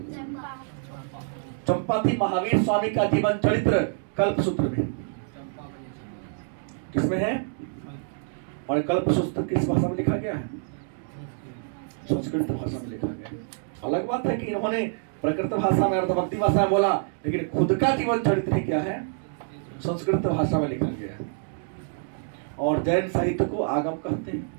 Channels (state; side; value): silent; left; digital silence